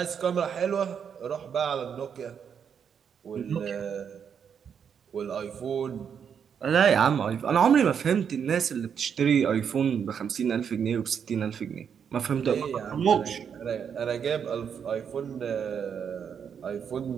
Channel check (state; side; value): quieter; left; 7.5 dB